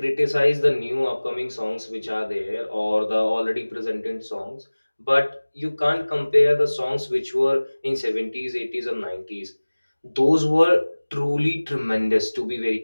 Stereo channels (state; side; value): inverted; both; correlation -1.00